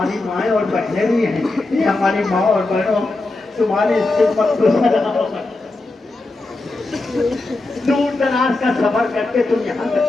माएँ और बहनें भी हैं, हमारी माँ और बहनों, तुम्हारी खिदमत को सलाम। दूर दराज का सफर करके तुम यहाँ तक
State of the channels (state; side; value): quieter; right; 3.1 dB